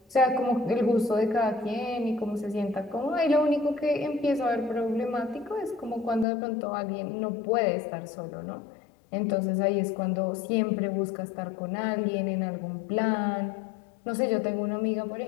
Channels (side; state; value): right; drops out; at 6.2 s